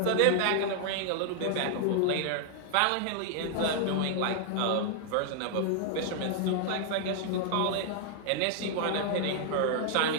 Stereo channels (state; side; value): different; both; correlation 0.00